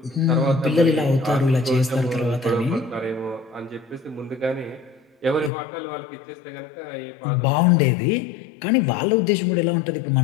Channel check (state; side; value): drops out; right; at 5.5 s